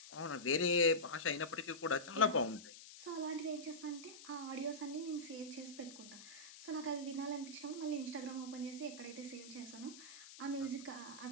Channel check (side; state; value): left; noise; hiss, 15 dB below the sound